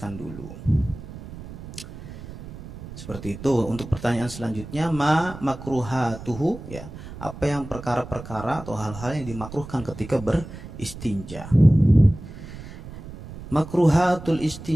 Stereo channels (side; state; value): right; noise; rumble, 13 dB below the sound